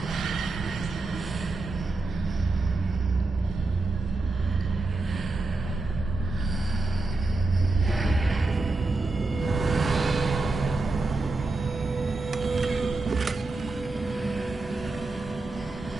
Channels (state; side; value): quieter; left; 3.3 dB